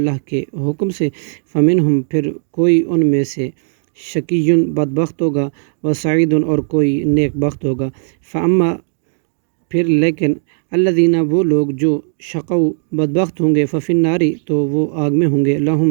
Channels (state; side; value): silent; left; digital silence